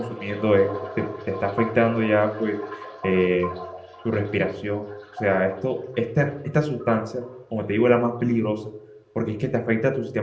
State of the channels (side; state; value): both; identical; correlation 1.00